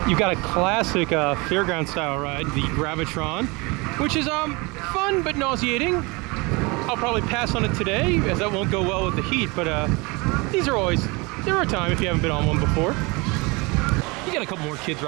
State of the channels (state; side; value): quieter; left; 26.5 dB